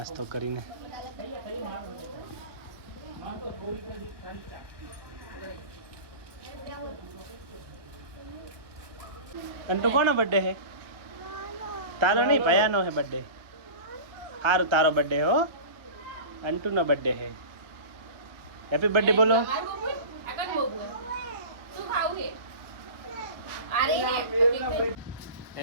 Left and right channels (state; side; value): late; left; 1.0 ms